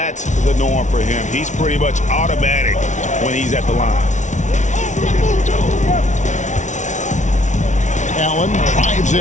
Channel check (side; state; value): right; late; 0.35 ms